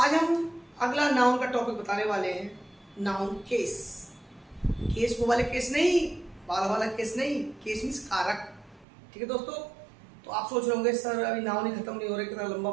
हम अगला नाउन का टॉपिक बताने वाले हैं, नाउन केस। केस वो वाले केस नहीं, बाल वाला केस नहीं, केस मीन्स कारक। ठीक है दोस्तों। तो आप सोच रहे होंगे सर अभी नाउन ही खत्म नहीं हो रहा, कितना लंबा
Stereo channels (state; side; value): drops out; left; at 8.8 s